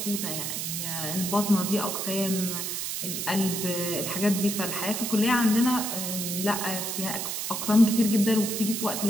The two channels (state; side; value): noise; right; hiss, 3 dB below the sound